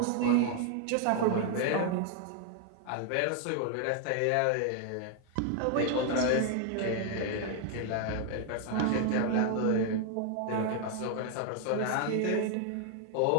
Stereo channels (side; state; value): both; different; correlation 0.00